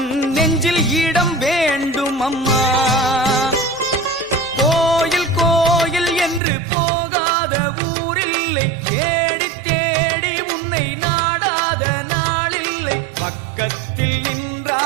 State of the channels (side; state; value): left; drops out; at 6.4 s